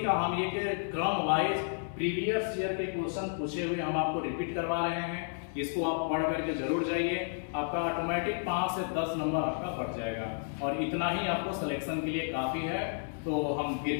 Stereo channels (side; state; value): right; silent; 57 dB below the other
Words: का हम ये क्रम वाइज प्रीवियस ईयर के क्वेश्चन पूछे हुए हम आपको रिपीट करवा रहे हैं। इसको आप पढ़ करके जरूर जाइए, आपका ऑटोमेटिक 5 से 10 नंबर आपका बढ़ जाएगा और इतना ही आपको सिलेक्शन के लिए काफी है। तो हम